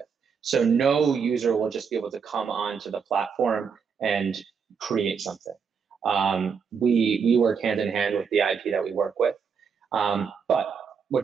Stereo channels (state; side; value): quieter; left; 6.3 dB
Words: So no user will just be able to come onto the platform and create something. We work hand in hand with the IP that we work with. But